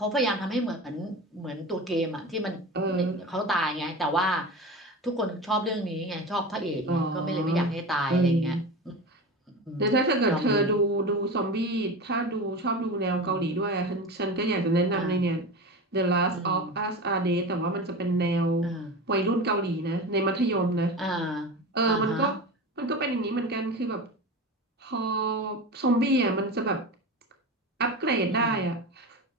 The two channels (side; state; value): both; normal; correlation 0.28